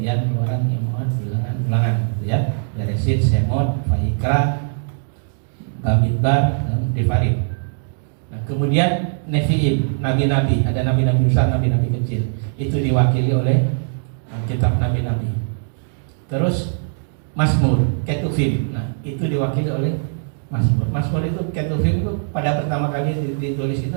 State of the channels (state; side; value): silent; left; digital silence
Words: Keluaran, Imot, Bilangan, gitu ya. Beresit, Semot, Vayikra, Bamidbar, dan Devarim. Nah, kemudian Nevi'im, nabi-nabi, ada nabi-nabi besar, nabi-nabi kecil. Itu diwakili oleh kitab nabi-nabi. Terus Mazmur, Ketuvim. Nah, itu diwakili oleh Mazmur. Mazmur itu, Ketuvim itu pada pertama kali ditulis itu